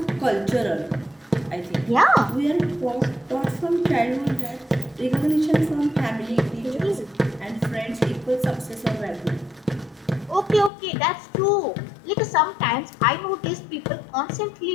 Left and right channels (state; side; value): drops out; right; at 10.7 s